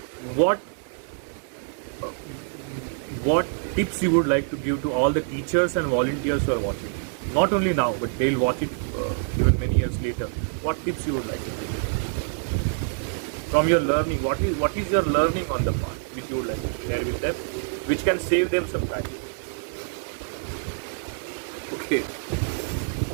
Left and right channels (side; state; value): left; silent; digital silence